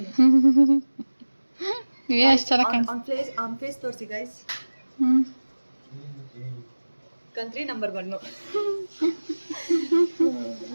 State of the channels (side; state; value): both; inverted; correlation -1.00